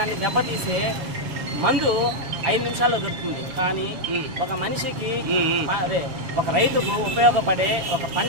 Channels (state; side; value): late; left; 7.2 ms